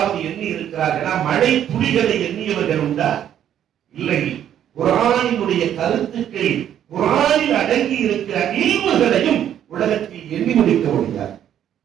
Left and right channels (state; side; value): quieter; left; 10.3 dB